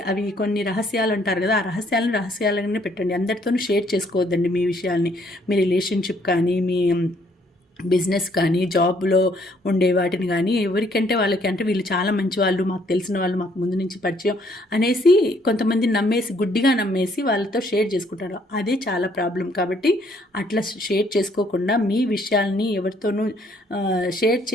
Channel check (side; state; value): both; normal; correlation 0.66